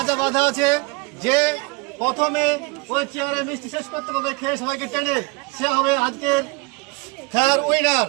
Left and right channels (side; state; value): left; quieter; 27.1 dB